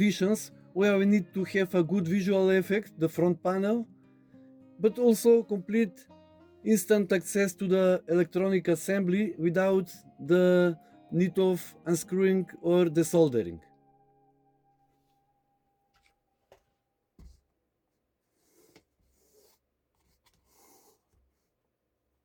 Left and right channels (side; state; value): both; identical; correlation 1.00